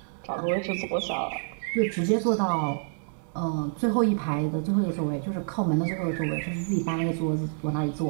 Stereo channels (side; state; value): left; silent; 60 dB below the other